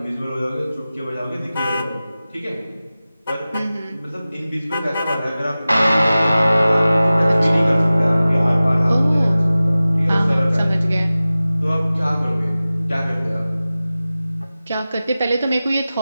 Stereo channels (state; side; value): inverted; both; correlation -0.97